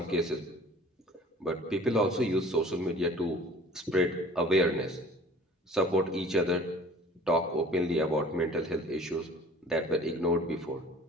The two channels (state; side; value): normal; both; correlation 0.48